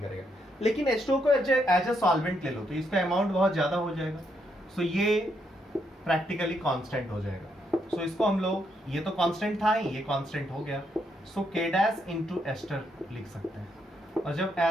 करेगा। लेकिन H2O को एज ए सॉल्वेंट ले लो तो इसका अमाउंट बहुत ज्यादा हो जाएगा, सो ये प्रैक्टिकली कांस्टेंट हो जाएगा। सो इसको हम लोग, ये तो कांस्टेंट था ही, ये कांस्टेंट हो गया, सो K डैश इंटू एस्टर लिख सकते हैं। और जब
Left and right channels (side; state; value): both; normal; correlation 0.77